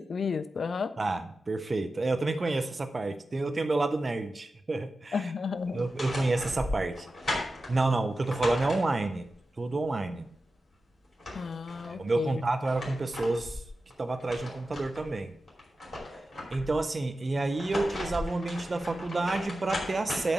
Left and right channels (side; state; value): both; normal; correlation 0.93